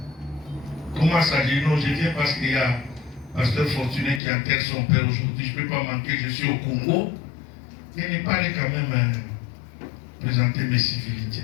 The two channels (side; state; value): right; drops out; at 4.2 s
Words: comment ça? Je dis non, je viens parce qu'il y a Pasteur Fortuné qui enterre son père aujourd'hui, je ne peux pas manquer, je suis au Congo. Il n'est pas allé quand même présenter mes